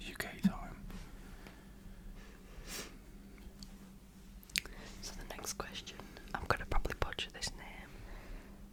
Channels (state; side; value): identical; both; correlation 1.00